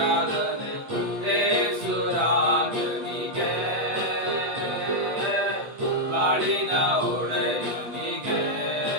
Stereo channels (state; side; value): late; left; 8.3 ms